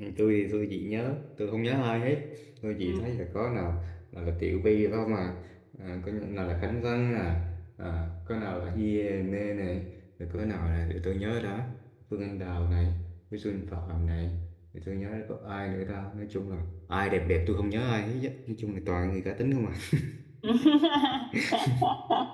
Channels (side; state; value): both; identical; correlation 1.00